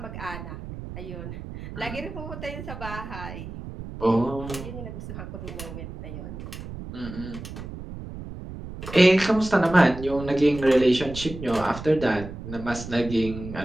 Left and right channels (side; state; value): right; noise; rumble, 10 dB below the sound